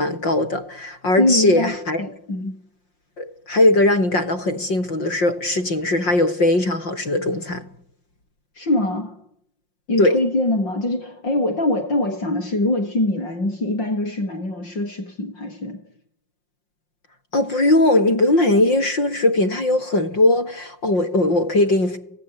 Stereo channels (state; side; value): late; right; 5.6 ms